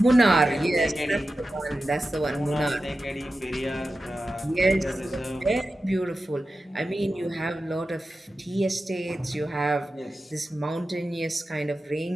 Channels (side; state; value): both; normal; correlation 0.93